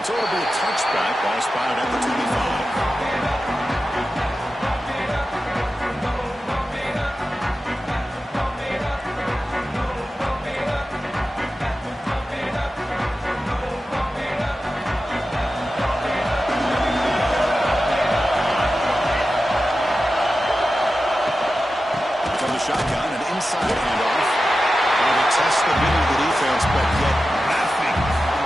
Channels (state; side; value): normal; both; correlation 0.93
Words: So it'll be a touchback. Ball spotted at the 25. From the shotgun, an inside handoff. Trying to test the middle of the defense, but yet nothing.